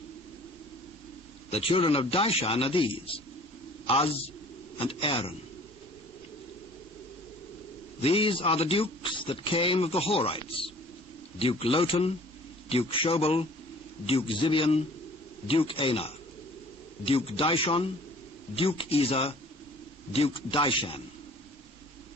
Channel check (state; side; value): normal; both; correlation 0.50